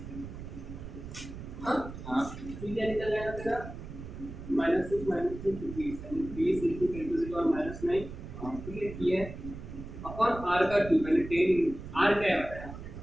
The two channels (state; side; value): noise; right; rumble, 11 dB below the sound